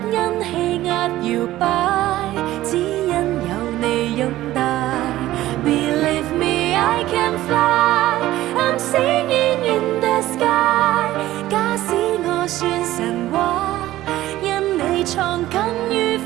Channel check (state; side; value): quieter; left; 15.3 dB